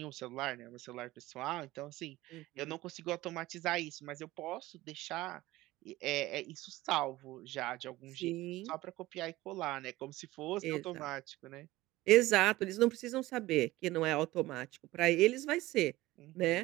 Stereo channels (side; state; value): left; quieter; 17.9 dB